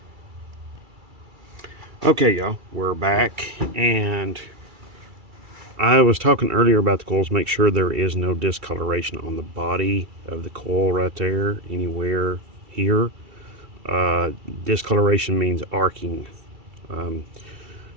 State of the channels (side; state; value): left; late; 2.3 ms